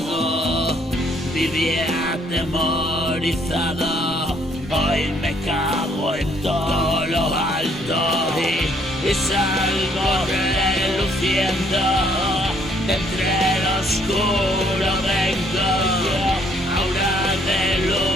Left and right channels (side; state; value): both; normal; correlation 0.66